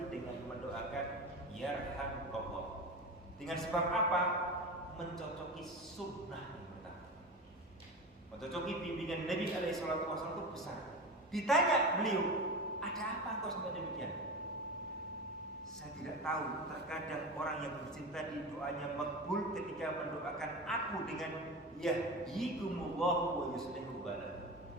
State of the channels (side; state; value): both; normal; correlation 0.27